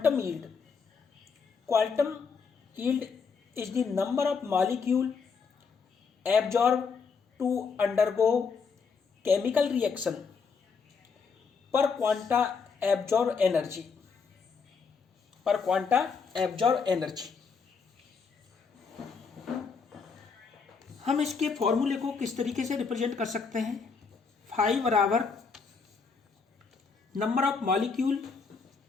yield. Quantum yield is the number of molecule absorb to undergo chemical reaction per quanta absorb energy. हम इसके फॉर्मूले को किस तरीके से रिप्रेजेंट कर सकते हैं? फाई बराबर number of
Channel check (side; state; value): right; quieter; 5.3 dB